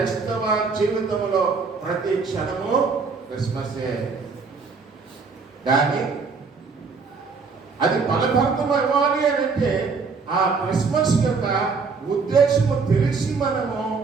జీవితంలో ప్రతి క్షణము క్రిస్మసే. కానీ అది ఫలభరితం ఇవ్వాలి అని అంటే ఆ క్రిస్మస్ యొక్క ఉద్దేశము తెలిసి మనము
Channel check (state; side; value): quieter; left; 4.8 dB